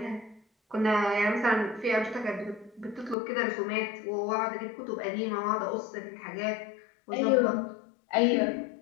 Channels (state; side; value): drops out; right; at 3.2 s